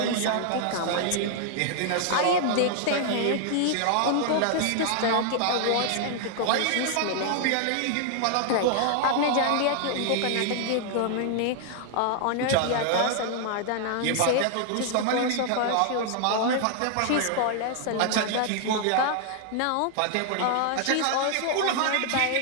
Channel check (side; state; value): both; different; correlation 0.00